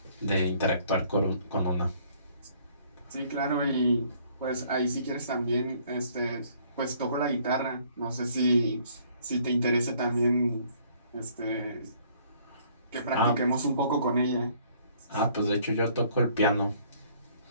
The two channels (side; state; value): both; inverted; correlation -0.61